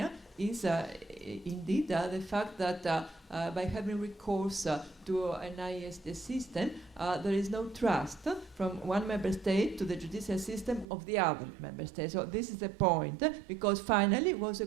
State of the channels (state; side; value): drops out; left; at 10.9 s